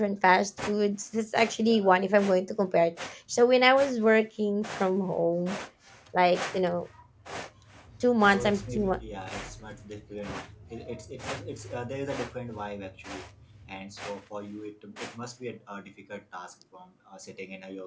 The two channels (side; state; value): both; identical; correlation 1.00